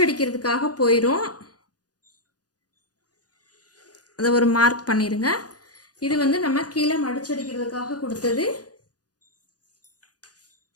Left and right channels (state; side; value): late; right; 0.68 ms